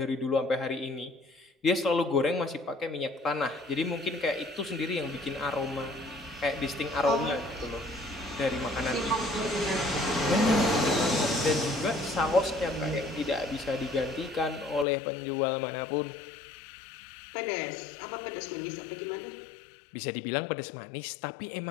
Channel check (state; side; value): drops out; right; at 14.9 s